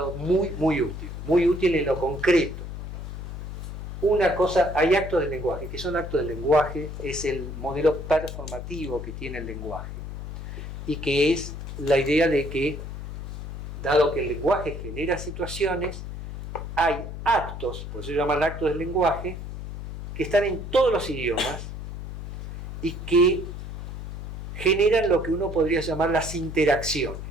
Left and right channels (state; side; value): noise; left; hum, 7 dB below the sound